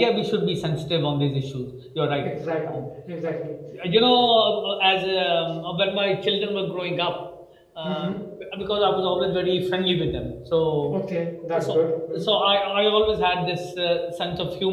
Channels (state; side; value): identical; both; correlation 1.00